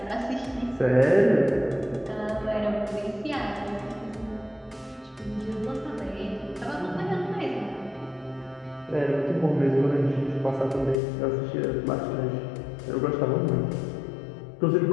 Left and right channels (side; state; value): right; drops out; at 11.0 s